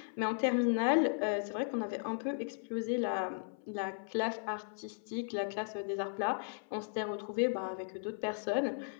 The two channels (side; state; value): right; silent; 54 dB below the other